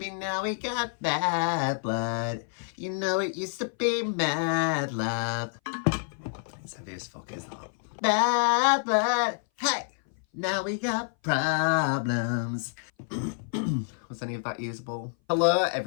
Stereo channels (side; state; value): right; silent; 57 dB below the other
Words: now we got bad blood. You know it used to be mad love. It's heavy as fuck, isn't it? Bad blood. Hey! Now we got problems. Was any of that usable? Hello